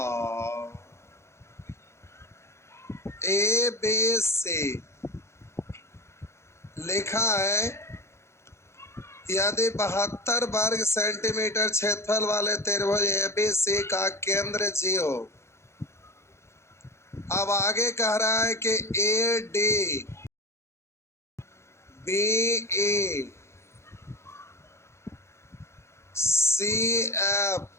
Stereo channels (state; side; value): late; right; 0.13 ms